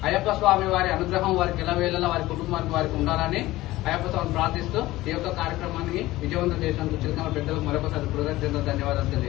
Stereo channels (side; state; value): right; quieter; 17.5 dB